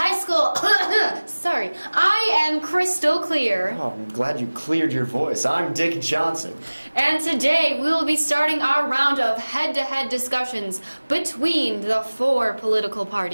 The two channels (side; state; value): both; inverted; correlation -1.00